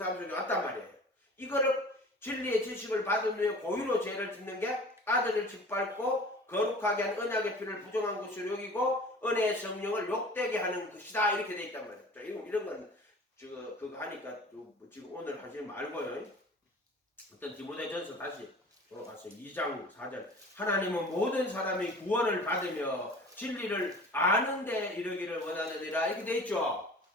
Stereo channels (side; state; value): both; normal; correlation 0.43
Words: 속에 왔단 말이에요. 이거를 진리의 지식을 받은 후에 고의로 죄를 짓는 게 아들을 짓밟고 거룩하게 한 언약의 피를 부정한 것으로 여기고 은혜의 성령을 욕되게 하는 것이다. 이렇게 돼 있단 말이에요. 자, 이런 건 그거 하니까 지금 오늘 하지 말고요. 어떤 디모데전서 다시 돌아가서 2장 4절. 하나님은 모든 사람이 구원을 받으며 진리를 아는 데 이르기를 원하느니라. 이렇게 돼 있죠.